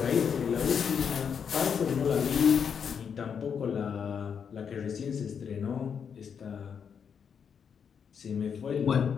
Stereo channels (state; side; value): quieter; right; 7.0 dB